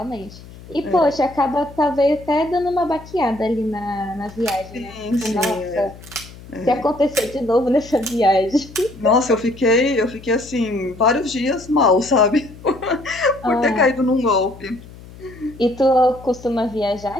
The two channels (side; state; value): left; noise; hum, 18 dB below the sound